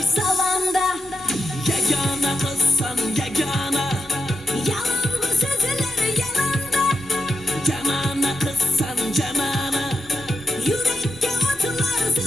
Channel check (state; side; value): normal; both; correlation 0.89